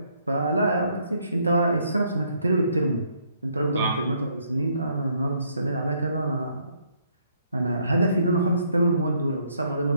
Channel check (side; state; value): both; inverted; correlation -0.69